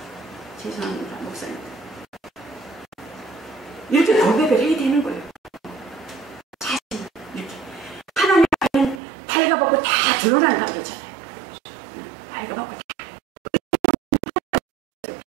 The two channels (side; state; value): left; drops out; at 9.0 s